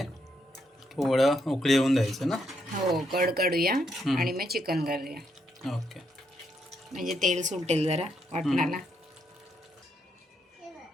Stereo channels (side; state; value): both; normal; correlation 0.77